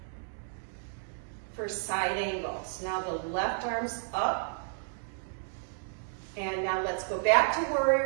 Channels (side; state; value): left; silent; digital silence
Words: for side angles. Now the left arm's up. And now let's go back to